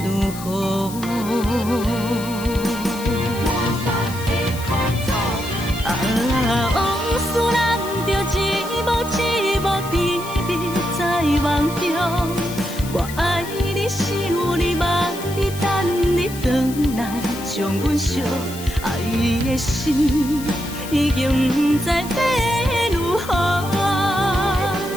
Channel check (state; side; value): noise; left; hiss, 13 dB below the sound